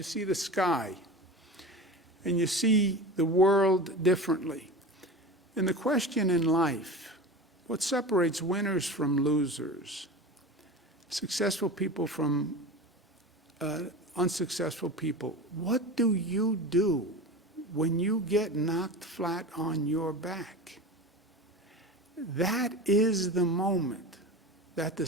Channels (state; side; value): normal; both; correlation 0.31